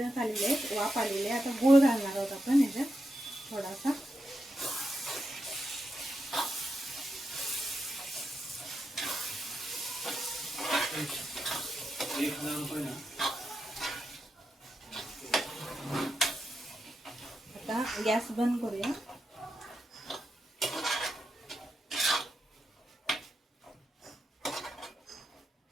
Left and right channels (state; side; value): normal; both; correlation 0.86